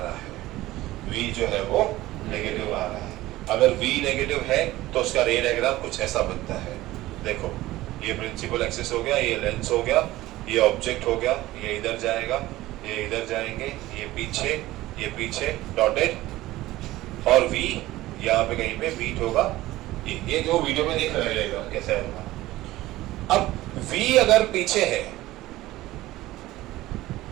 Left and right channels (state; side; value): quieter; left; 16.9 dB